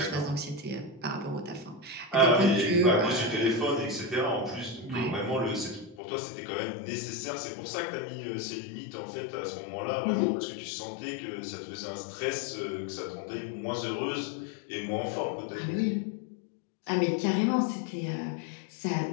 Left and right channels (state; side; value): drops out; right; at 6.0 s